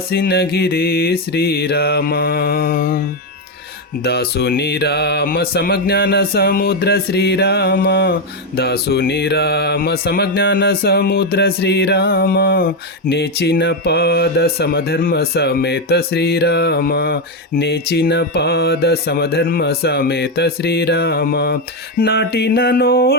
శ్రీరామ. దాసుని రామ సమజ్ఞాన సముద్ర శ్రీరామ దాసుని రామ సమజ్ఞాన సముద్ర శ్రీరామ. నేచిన పాద సమధర్మ సమేత శ్రీరామ నేచిన పాద సమధర్మ సమేత శ్రీరామ. నాటిన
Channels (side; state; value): both; normal; correlation 0.07